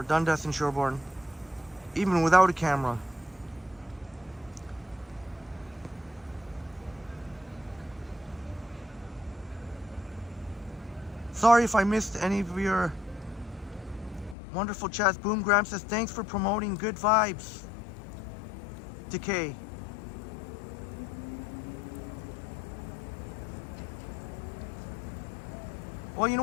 Dundas and Sherborne, even without a camera. Sorry if I missed any of your wonderful chats. Boom Graham says, thanks for promoting good vibes. Decay. Well, you know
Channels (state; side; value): drops out; right; at 14.4 s